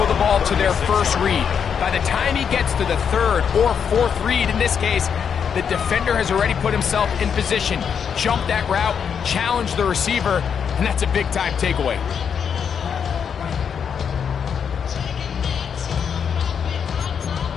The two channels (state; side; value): quieter; right; 7.2 dB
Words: the ball to their first read. By the time he gets to the third or fourth read, in this case, the defender has already put himself in position, jump that route, challenge the receiver, and that's a big-time takeaway.